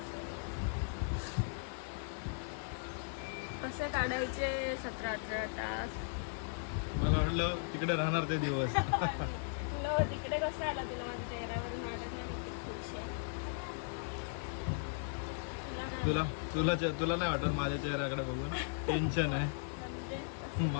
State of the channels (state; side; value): silent; right; digital silence